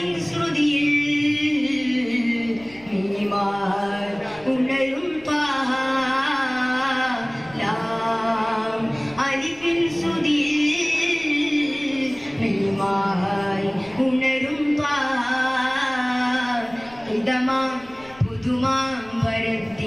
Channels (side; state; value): left; noise; rumble, 25 dB below the sound